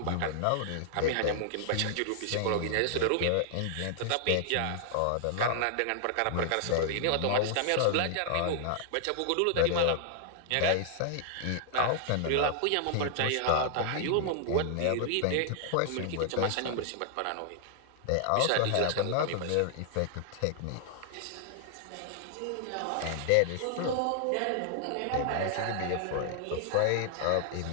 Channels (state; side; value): different; both; correlation 0.00